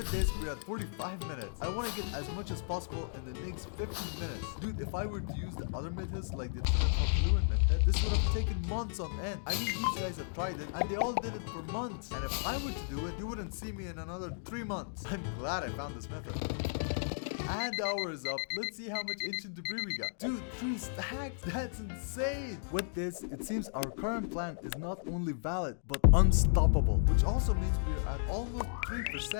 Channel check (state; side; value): silent; right; digital silence